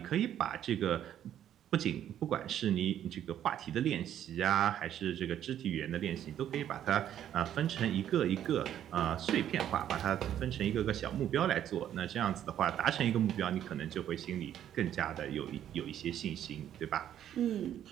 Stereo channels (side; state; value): left; quieter; 10.7 dB